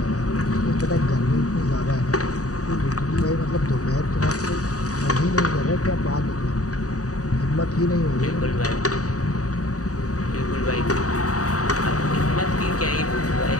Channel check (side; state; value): right; late; 0.66 ms